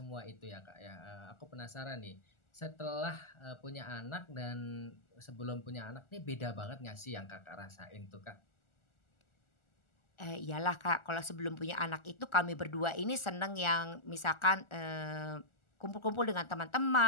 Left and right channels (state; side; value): late; right; 1.4 ms